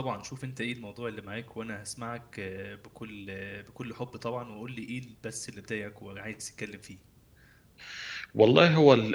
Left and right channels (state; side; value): identical; both; correlation 1.00